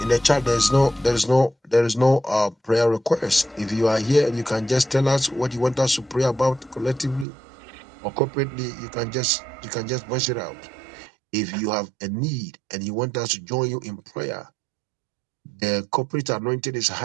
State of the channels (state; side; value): drops out; left; at 7.2 s